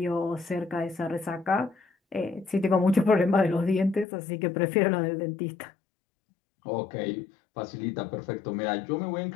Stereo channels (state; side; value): drops out; right; at 4.0 s